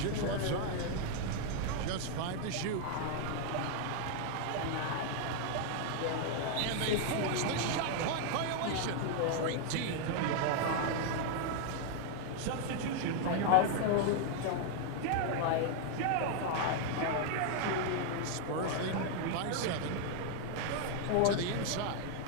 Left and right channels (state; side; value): different; both; correlation 0.00